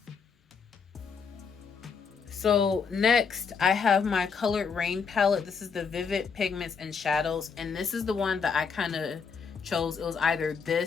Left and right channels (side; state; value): right; quieter; 5.9 dB